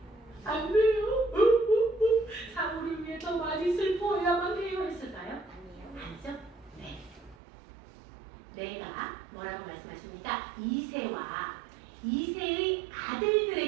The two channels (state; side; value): drops out; left; at 7.4 s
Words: 안 돼요. 사울을 위해 더 많이 슬퍼해야만 해요 했을까요? 아니에요. 아니죠? 네. 내가 뭐라고 말씀하십니까? 이새의